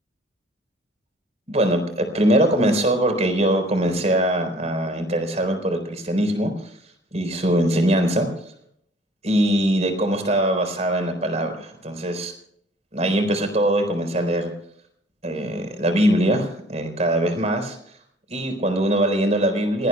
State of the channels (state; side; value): normal; both; correlation 0.53